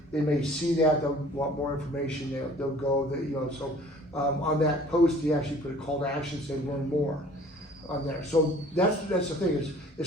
they may see that, they'll want more information, they'll go, so on that post, he actually put a call to action, say learn more on there. So that's the thing, is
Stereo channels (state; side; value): normal; both; correlation 0.51